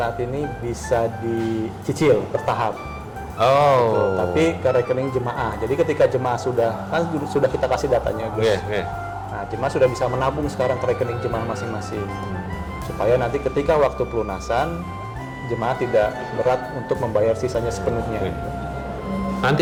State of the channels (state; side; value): identical; both; correlation 1.00